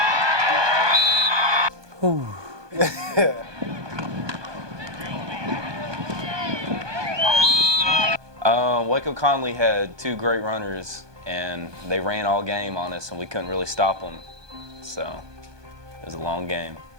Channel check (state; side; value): late; left; 1.2 ms